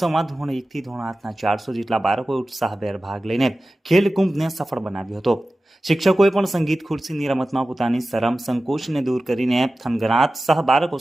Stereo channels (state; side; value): normal; both; correlation 0.95